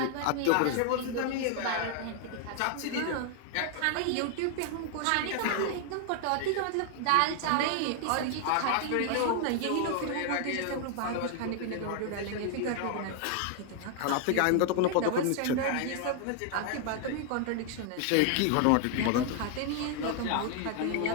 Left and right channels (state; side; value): different; both; correlation 0.00